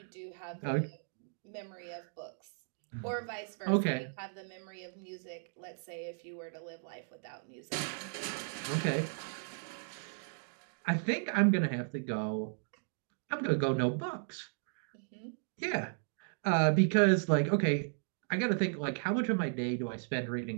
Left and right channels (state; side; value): silent; left; digital silence